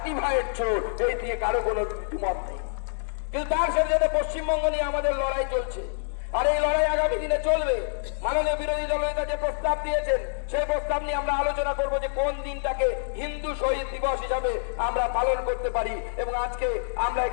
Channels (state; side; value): silent; right; 60 dB below the other